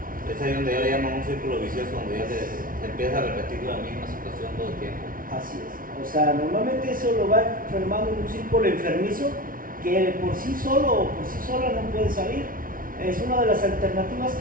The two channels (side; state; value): left; late; 0.41 ms